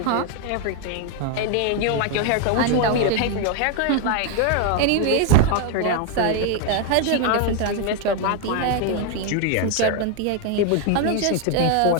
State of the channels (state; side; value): different; both; correlation 0.01